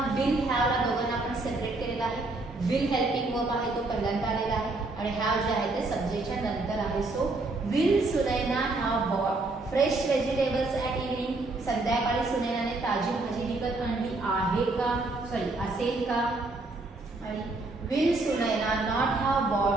विल हॅवला दोघांना आपण सेपरेट केलेला आहे. विल हेल्पिंग वर्ब आहे, तो पहिल्यांदा आलेला आहे आणि हॅव जे आहे ते सब्जेक्टच्या नंतर आहे. So will Sunaina have bought fresh vegetables at evening. संध्याकाळी सुनैनाने ताजी भाजी विकत आणली आहे का, असेल का. आणि will Sunaina not have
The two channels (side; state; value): left; quieter; 3.2 dB